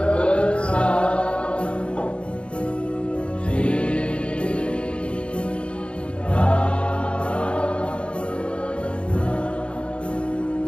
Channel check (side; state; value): right; late; 0.057 ms